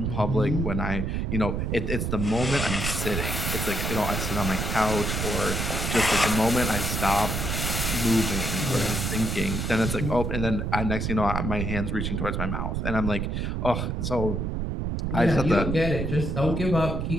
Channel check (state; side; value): noise; right; rumble, 1 dB below the sound